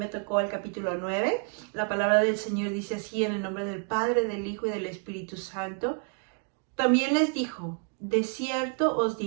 tocó el capítulo 9. La palabra del Señor dice así: en el nombre del Padre, del Hijo y del Espíritu Santo. También les dijo: de cierto os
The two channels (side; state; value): left; quieter; 39.9 dB